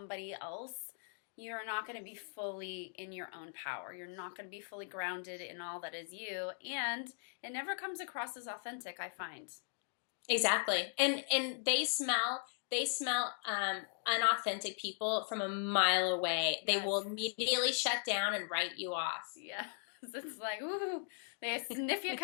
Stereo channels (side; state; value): right; silent; digital silence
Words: else, you're not going to be fully in your own power. You're not going to be fully grounded in all that is you. And it never comes across as authentic, I find. Exactly. And they smell unauthentic people from a mile away. They will immediately shut down and write you off. Yeah. It's like, ooh, they sniff you